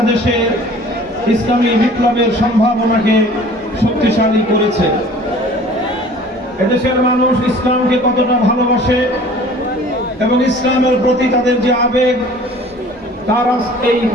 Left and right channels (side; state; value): both; normal; correlation 0.48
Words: ইসলামী বিপ্লবের সম্ভাবনাকে শক্তিশালী করেছে। এদেশের মানুষ ইসলামকে কতটা ভালোবাসে এবং ইসলামের প্রতি তাদের যে আবেগ, তার এই